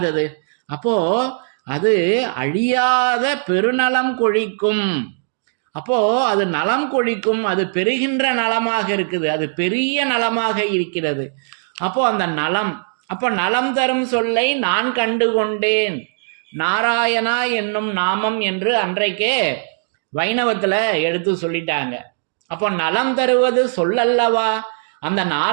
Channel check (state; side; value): silent; left; digital silence